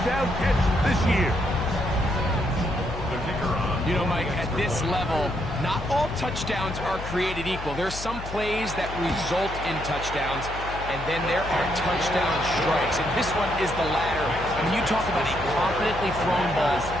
catch this year. The kicker on. You know, Mike, at this level, not all touchdowns are created equal. There's some plays that result in touchdowns, and then there are touchdown strikes. And this one is the latter. I mean, you talk about a confidently thrown ball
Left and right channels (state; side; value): noise; left; hum, 10 dB below the sound